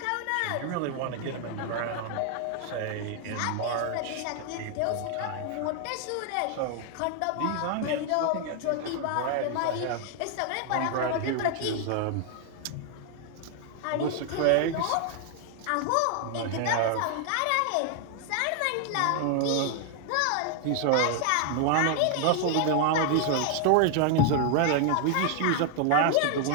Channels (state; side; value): different; both; correlation 0.00